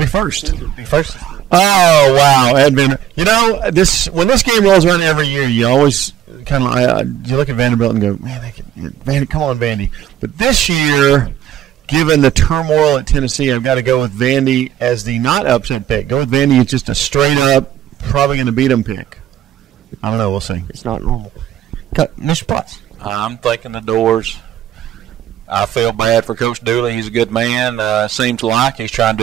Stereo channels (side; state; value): left; quieter; 11.3 dB